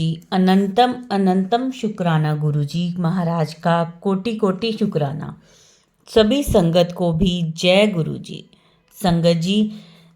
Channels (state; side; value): identical; both; correlation 1.00